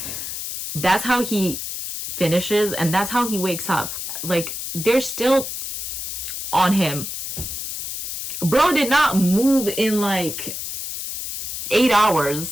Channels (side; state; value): left; noise; hiss, 6 dB below the sound